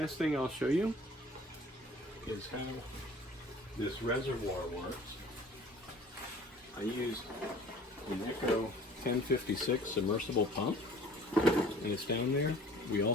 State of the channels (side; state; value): both; normal; correlation 0.49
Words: thing I'll show you is how this reservoir works. I used an Echo 1056 submersible pump, and it's down there. We